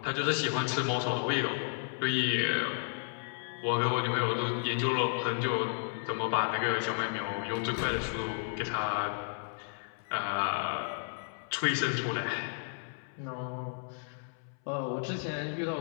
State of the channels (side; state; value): right; silent; 56 dB below the other